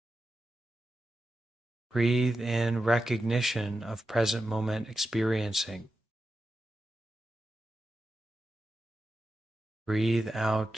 Breathe in recognition of present moment experiencing. Breathe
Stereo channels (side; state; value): both; normal; correlation 0.90